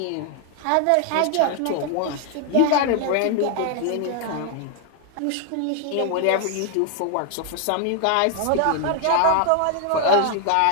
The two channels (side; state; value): both; different; correlation 0.00